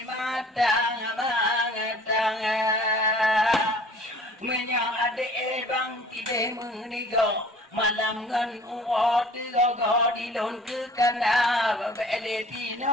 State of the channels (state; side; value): normal; both; correlation 0.49